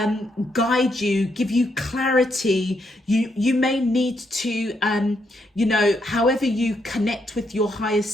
guide you, give you clarity. You may need to however you connect with your higher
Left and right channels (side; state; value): both; normal; correlation 0.78